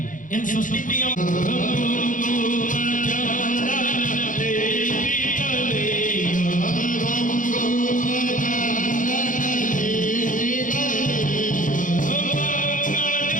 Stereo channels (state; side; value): late; right; 0.38 ms